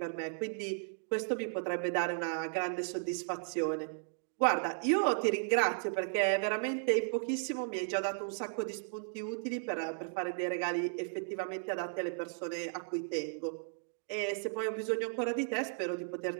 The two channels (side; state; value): left; silent; digital silence